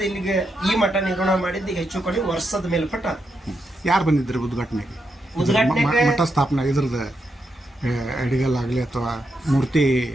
ಇಲ್ಲಿಗೆ ಈ ಮಠ ನಿರ್ಮಾಣ ಮಾಡಿದ್ದು ಈಗ ಹೆಚ್ಚು ಕಡಿಮೆ ವರ್ಷದ ಮೇಲ್ಪಟ್ಟ. ಯಾರು ಬಂದಿದ್ರು ಉದ್ಘಾಟನೆಗೆ? ಮಠ ಸ್ಥಾಪನೆ ಇದ್ರದ್ದು ಅಡಿಗಲ್ಲಾಗಲಿ ಅಥವಾ ಮೂರ್ತಿ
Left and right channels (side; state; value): both; normal; correlation 0.83